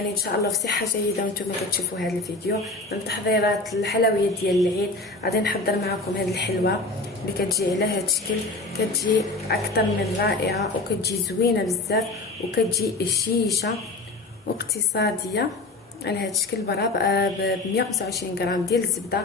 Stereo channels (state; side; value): quieter; right; 3.2 dB